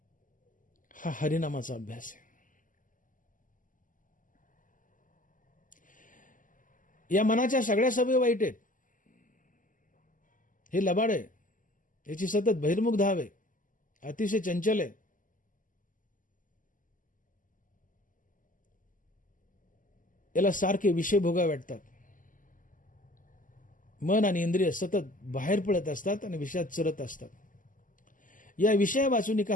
हा हरिनामाचा अभ्यास आहे. या मनाच्या सगळ्या सवयी वाईट आहेत. हे लबाड आहे, याची सतत बहिर्मुख धाव आहे, अतिशय चंचल आहे. याला सारखे विषय भोगावे वाटतात. मन आणि इंद्रिय सतत बाहेर पडत असतात आणि विषयात चरत असतात. या विषया वाचून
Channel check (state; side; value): late; right; 0.38 ms